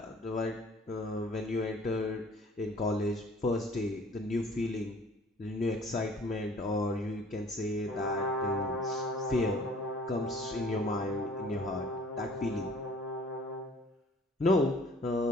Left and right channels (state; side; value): normal; both; correlation 0.53